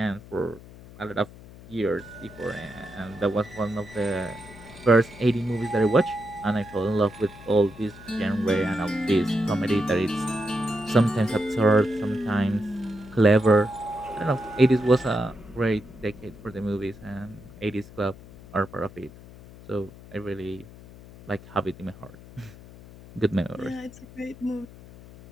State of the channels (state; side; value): noise; left; hum, 19 dB below the sound